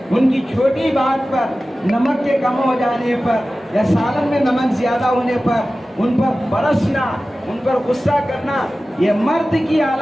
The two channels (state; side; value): normal; both; correlation 0.96